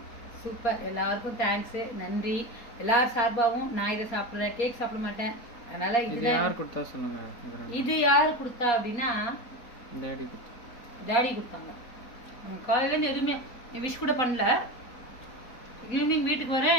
சூப்பர், எல்லாருக்கும் தேங்க்ஸு, நன்றி. எல்லார் சார்பாகவும் நான் இதை சாப்பிட்றேன். கேக் சாப்பிட மாட்டேன், அதனால இது யார் கொடுத்தா சொன்னாங்க. இது யார் கொடுத்தா அப்படின்னா டாடி கொடுத்தாங்க. காலையிலேருந்து எதுவுமே விஷ் கூட பண்ணல. ஈவினிங் வீட்டுக்கு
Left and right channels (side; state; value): right; late; 4.2 ms